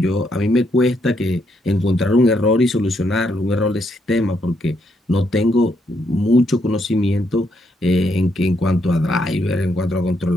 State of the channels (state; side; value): normal; both; correlation 0.76